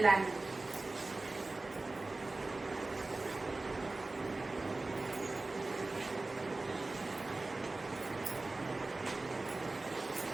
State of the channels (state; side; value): quieter; left; 3.2 dB